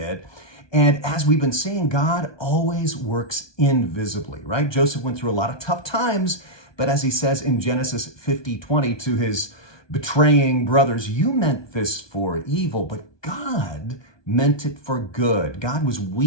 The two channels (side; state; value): right; late; 1.2 ms